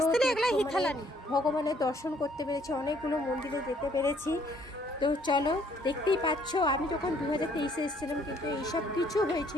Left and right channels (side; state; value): both; normal; correlation 0.64